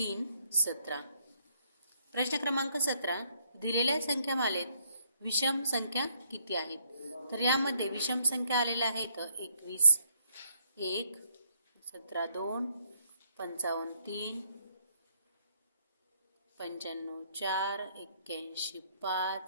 17. प्रश्न क्रमांक 17, दिलेल्या संख्यामालेत विषम संख्या किती आहेत? तर यामध्ये विषम संख्या आलेल्या आहेत 21 1, 17 2, 55 3, 95 4, 81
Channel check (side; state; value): both; inverted; correlation -0.72